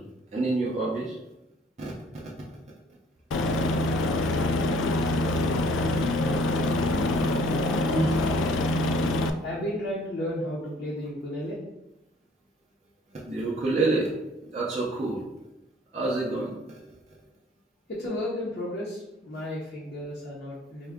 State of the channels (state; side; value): normal; both; correlation 0.57